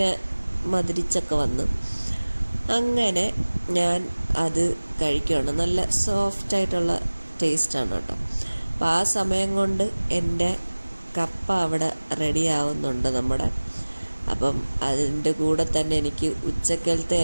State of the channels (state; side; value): inverted; both; correlation -1.00